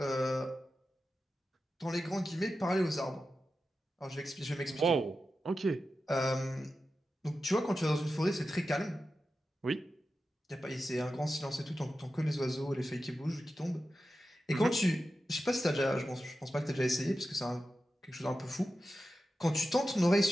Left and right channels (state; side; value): normal; both; correlation 0.92